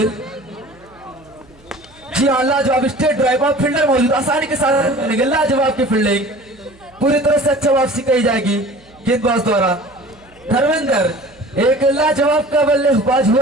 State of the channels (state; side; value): noise; right; hum, 28 dB below the sound